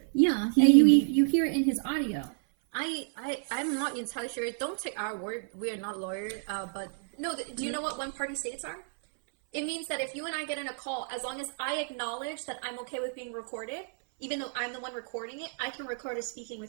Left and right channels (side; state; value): left; silent; 57 dB below the other